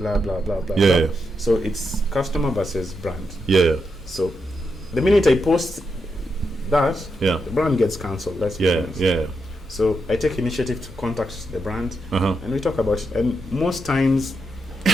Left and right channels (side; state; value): both; normal; correlation 0.84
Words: blah blah blah. So it's customer versus brand. So the minute I post that, the brand gets cancelled. That's So I take initiative to contact the brand and we talk about it. And most times,